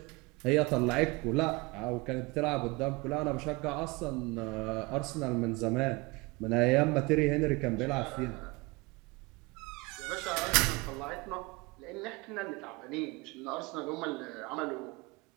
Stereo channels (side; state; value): left; quieter; 24.9 dB